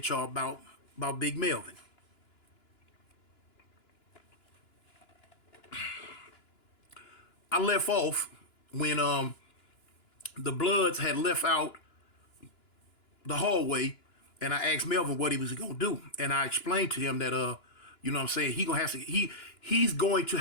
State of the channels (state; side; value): late; right; 2.9 ms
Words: y'all about Big Melvin. I left off when the Bloods had left out the hallway, and I asked Melvin what he was gonna do, and I explained to him that you know what I'm saying, he's going to